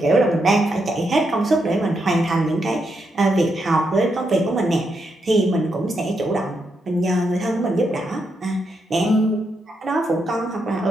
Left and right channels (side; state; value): both; normal; correlation 0.81